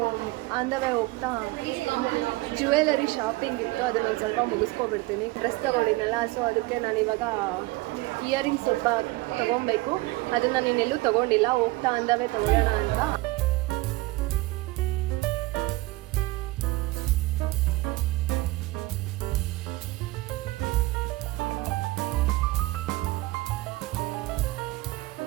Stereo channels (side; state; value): left; quieter; 20.4 dB